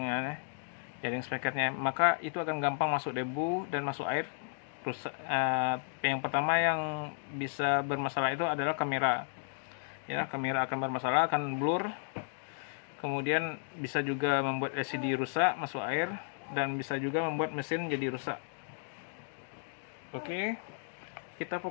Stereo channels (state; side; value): silent; right; digital silence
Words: speakernya, maka itu akan gampang masuk debu dan masuk air. Yang pertama yang bisa bermasalah itu adalah kamera. Ya, kamera akan bermasalah, akan blur. Kemudian bisa juga membuat LCD rusak, masuk air, dan bisa juga membuat mesin jadi rusak. Oke, kita